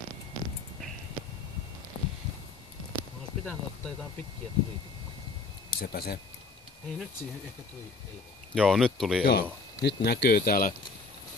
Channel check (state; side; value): quieter; right; 4.0 dB